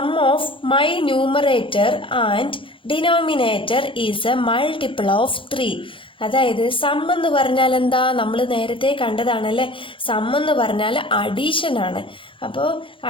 of my numerator and denominator is a multiple of 3. അതായത് സം എന്ന് പറഞ്ഞാൽ എന്താ? നമ്മൾ നേരത്തെ കണ്ടതാണല്ലേ. സം എന്ന് പറഞ്ഞാൽ അഡീഷൻ ആണ്. അപ്പോൾ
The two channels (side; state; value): right; late; 0.25 ms